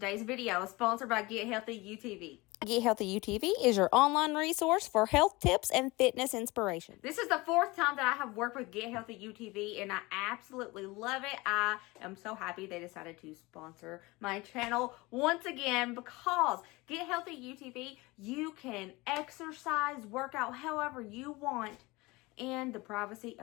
video is sponsored by Get Healthy UTV. Get Healthy UTV is your online resource for health tips and fitness inspiration. This is the fourth time that I have worked with Get Healthy UTV, and I absolutely love it. I am so happy they decided to sponsor my channel once again because Get Healthy UTV, you can exercise, work out however you want in the privacy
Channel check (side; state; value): right; quieter; 22.7 dB